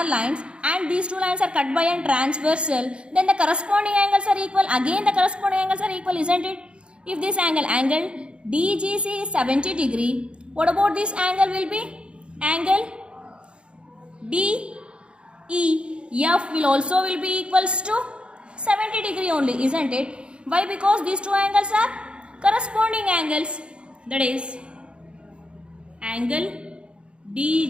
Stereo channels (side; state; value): left; late; 0.056 ms